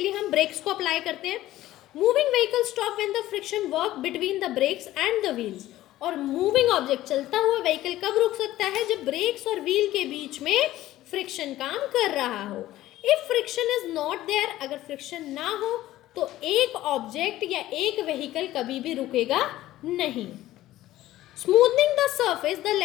लिए हम ब्रेक्स को अप्लाई करते हैं। Moving vehicle stop when the friction work between the brakes and the wheels, और मूविंग ऑब्जेक्ट चलता हुआ व्हीकल कब रुक सकता है? जब ब्रेक्स और व्हील के बीच में फ्रिक्शन काम कर रहा हो। If friction is not there, अगर फ्रिक्शन ना हो तो एक ऑब्जेक्ट या एक व्हीकल कभी भी रुकेगा नहीं। Smoothening the surface the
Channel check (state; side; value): quieter; right; 15.0 dB